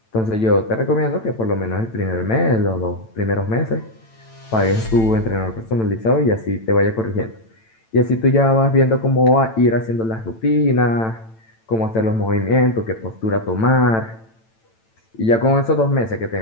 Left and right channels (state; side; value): late; right; 9.0 ms